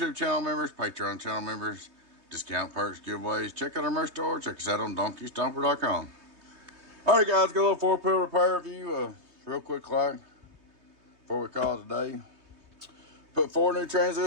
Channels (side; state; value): left; late; 3.2 ms